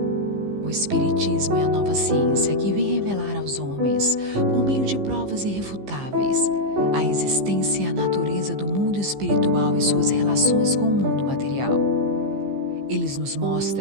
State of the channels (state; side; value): late; left; 15 ms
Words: O Espiritismo é a nova ciência que vem revelar aos homens, por meio de provas irrefutáveis, a existência e a natureza do mundo espiritual e suas relações com o mundo material. Eles nos